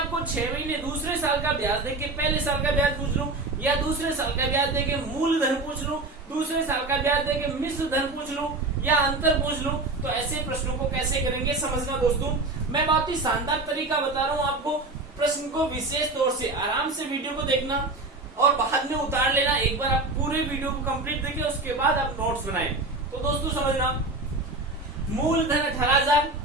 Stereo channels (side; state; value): left; quieter; 3.1 dB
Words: 6 महीने दूसरे साल का ब्याज देके पहले साल का ब्याज पूछ लूं, या दूसरे साल का ब्याज देके मूलधन पूछ लूं, दूसरे साल का ब्याज देके मिश्र धन पूछ लूं, या अंतर पूछ लूं, तो ऐसे प्रश्नों को कैसे करेंगे समझना दोस्तों। मैं बहुत ही शानदार तरीका बता रहा हूं आपको। प्रश्न को विशेष तौर से आराम से वीडियो को देखना और बाद में उतार लेना। एक बार आप पूरे वीडियो को कंप्लीट देखिए, उसके बाद आप नोट्स बनाएं। तो दोस्तों समझना, मूलधन 18,000,